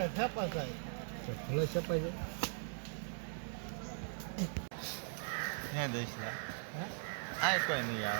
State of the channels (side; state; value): left; silent; digital silence